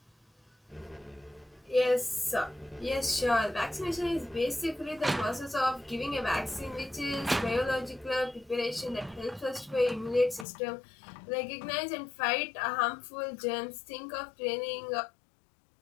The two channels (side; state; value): right; drops out; at 10.5 s